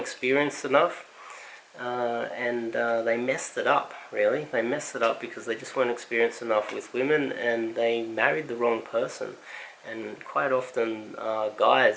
enough, and they messed it up, really. They messed it up because they just weren't experienced enough with women, and they married the wrong person. And quite often,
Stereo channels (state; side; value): identical; both; correlation 1.00